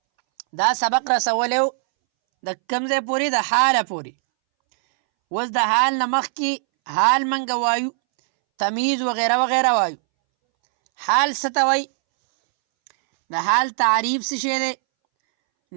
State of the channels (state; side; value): silent; left; 64 dB below the other